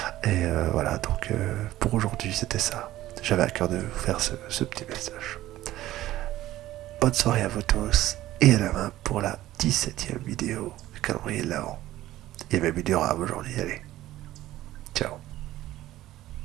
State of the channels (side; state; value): left; quieter; 15.0 dB